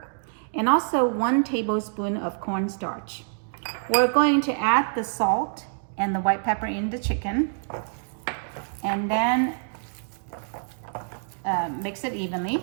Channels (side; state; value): left; silent; digital silence